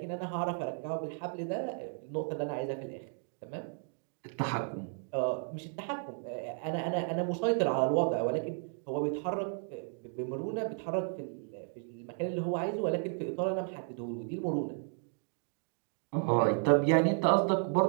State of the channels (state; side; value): silent; left; 55 dB below the other